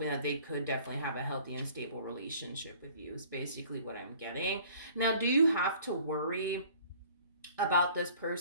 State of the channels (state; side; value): inverted; both; correlation -0.52